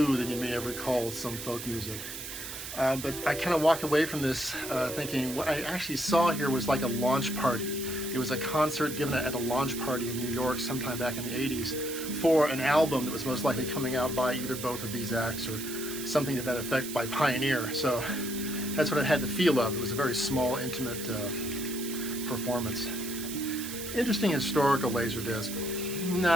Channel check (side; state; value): right; noise; hiss, 8 dB below the sound